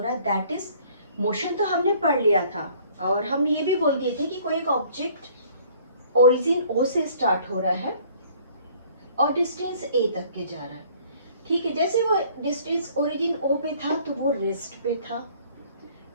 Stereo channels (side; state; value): both; inverted; correlation -0.56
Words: है, दैट इज मोशन। तो हमने पढ़ लिया था और हम ये भी बोल दिए थे कि कोई एक ऑब्जेक्ट ओरिजिन O से स्टार्ट हो रहा है और डिस्टेंस A तक के जा रहा है। ठीक है, जैसे वो डिस्टेंस ओरिजिन O पे था तो वो रेस्ट पे था।